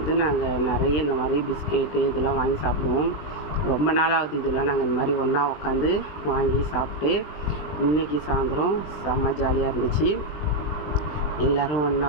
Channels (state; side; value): late; right; 20 ms